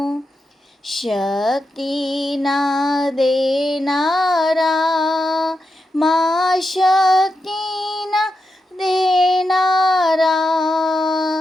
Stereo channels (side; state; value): both; normal; correlation 0.87